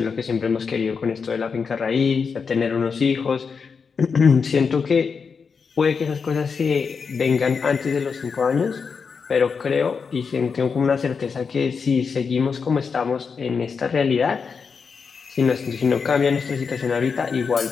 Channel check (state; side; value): quieter; right; 5.6 dB